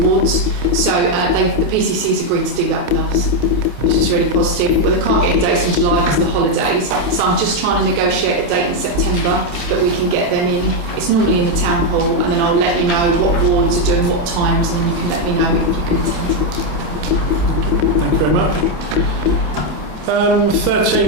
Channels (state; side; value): late; left; 27 ms